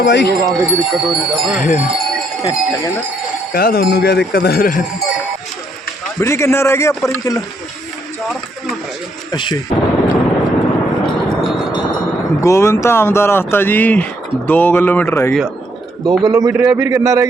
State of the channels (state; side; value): normal; both; correlation 0.72